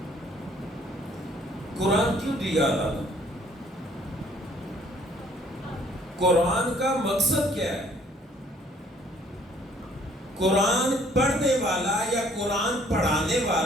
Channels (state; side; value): normal; both; correlation 0.60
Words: قرآن کیوں دیا اللہ نے؟ قرآن کا مقصد کیا ہے؟ قرآن پڑھنے والا یا قرآن پڑھانے